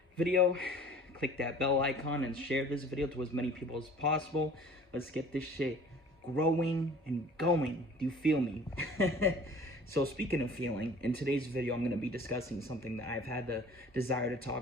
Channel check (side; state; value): both; normal; correlation 0.47